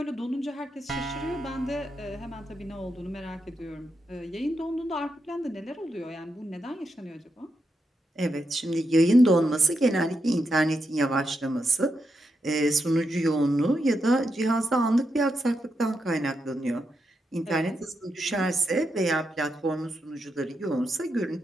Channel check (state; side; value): normal; both; correlation 0.84